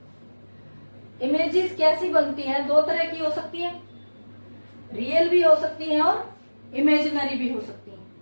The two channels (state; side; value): inverted; both; correlation -1.00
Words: इमेजेस कैसी बनती हैं? 2 तरह की हो सकती है, रियल भी हो सकती हैं और इमेजिनरी भी हो सकती हैं।